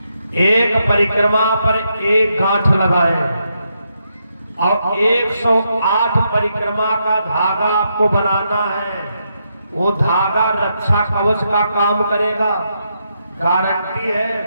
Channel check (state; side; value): inverted; both; correlation -0.81